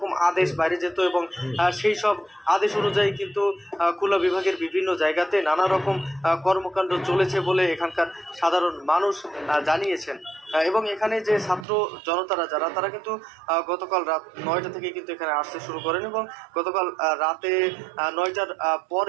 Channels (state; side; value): drops out; left; at 11.7 s